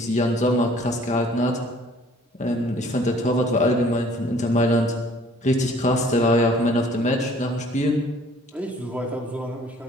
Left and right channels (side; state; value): both; normal; correlation 0.56